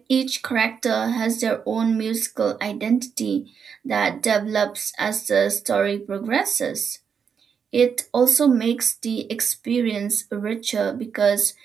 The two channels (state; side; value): quieter; left; 6.8 dB